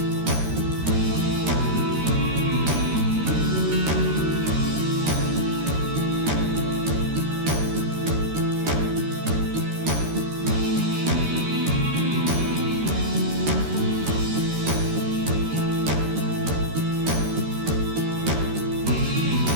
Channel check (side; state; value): left; late; 13 ms